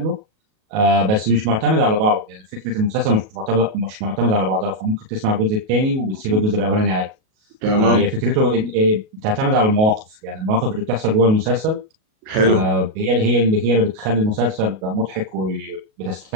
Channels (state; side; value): late; left; 37 ms